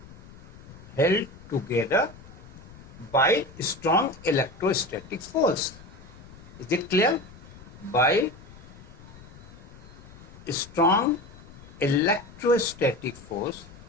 held together by strong electrostatic force. Is it clear? By strong electrostatic force,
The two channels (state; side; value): noise; left; rumble, 19 dB below the sound